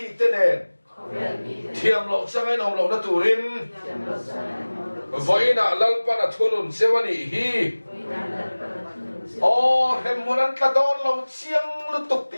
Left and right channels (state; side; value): inverted; both; correlation -1.00